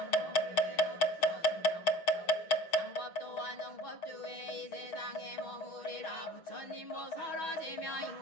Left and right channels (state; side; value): late; right; 6.3 ms